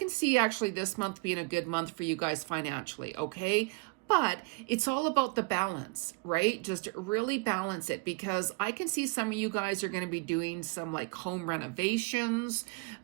see actually this month being a good month for you guys financially, okay? But it's all about the balance, right? Just really balance it, because I can see some of you guys are going to be doing some like home renovations.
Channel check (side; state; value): left; quieter; 29.1 dB